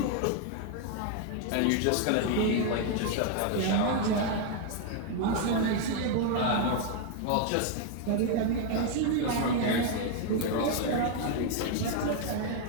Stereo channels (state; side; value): different; both; correlation 0.00